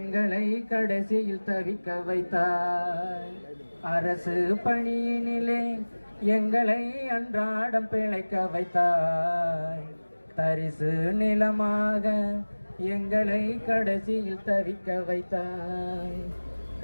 கடைசியில் தவிக்க வைத்தாய். அரசு பணியினிலே எங்களை அன்றாடம் பிழைக்க வைத்தாய், தரிசு நிலமாக எங்களை கடைசியில் தவிக்க வைத்தாய்.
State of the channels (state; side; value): inverted; both; correlation -1.00